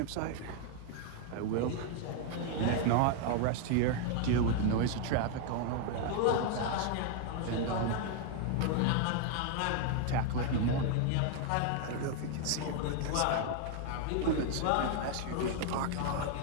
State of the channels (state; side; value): different; both; correlation 0.00